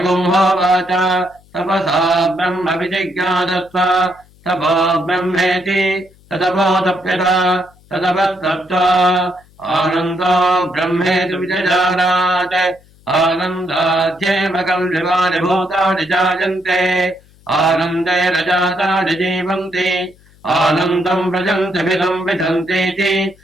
तपसा ब्रह्म विजिज्ञासस्व तपो ब्रह्मेति तदपोतप्यत तदपस्तप्त्वा आनन्दो ब्रह्मेति विजजानात् आनन्दाध्येव कल्विवानि भूतानि जायन्ते आनन्दे रजातानि जीवन्ति आनन्दम् व्रजन्ति विदम् विदन्तीति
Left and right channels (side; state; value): left; noise; hum, 29 dB below the sound